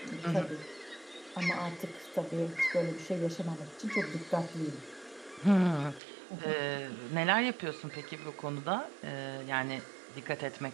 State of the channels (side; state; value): left; drops out; at 6.0 s